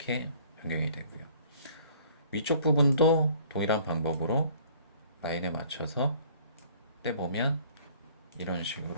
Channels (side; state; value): both; inverted; correlation -0.54